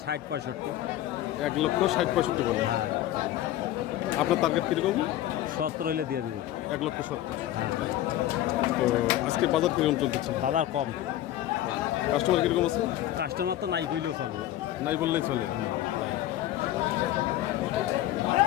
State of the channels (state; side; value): quieter; right; 13.6 dB